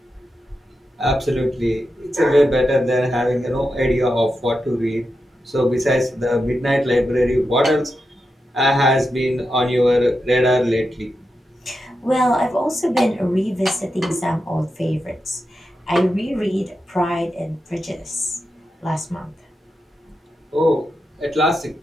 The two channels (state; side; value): normal; both; correlation 0.88